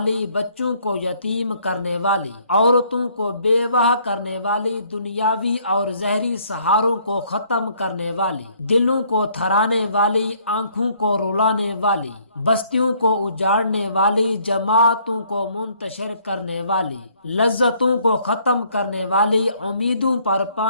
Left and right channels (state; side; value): inverted; both; correlation -0.64